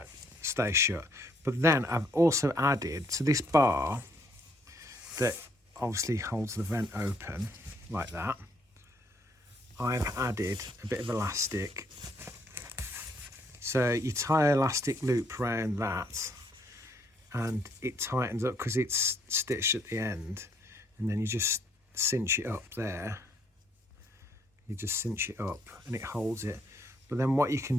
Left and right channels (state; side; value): normal; both; correlation 0.68